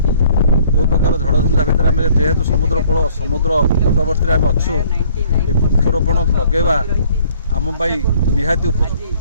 जो प्रकार झड़ झंझा भितर आम जेहेतु समुद्र तटवर्ती आम अच्छु ये वृक्षरोपण लगेवा आम निहाती उपयोगी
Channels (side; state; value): both; inverted; correlation -0.59